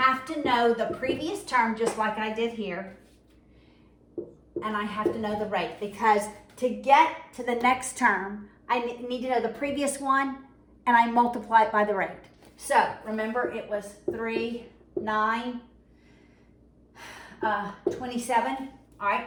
to know the previous term just like I did here, and I have to know the rate, because to get to the next term, I need to know the previous one, and I multiply it by the rate. So remember, it was 3, 9, 27. All right,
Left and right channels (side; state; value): both; identical; correlation 1.00